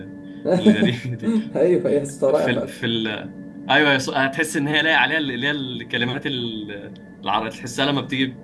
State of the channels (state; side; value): identical; both; correlation 1.00